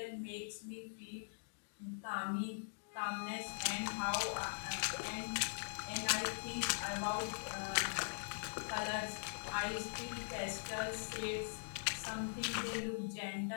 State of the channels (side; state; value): right; silent; digital silence